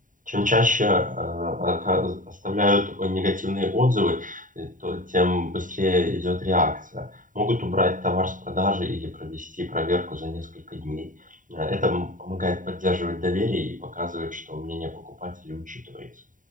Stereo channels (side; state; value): left; late; 0.38 ms